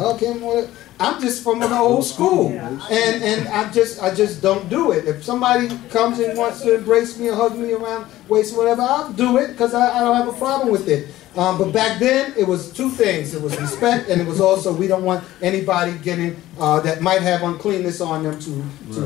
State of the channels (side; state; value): right; quieter; 15.3 dB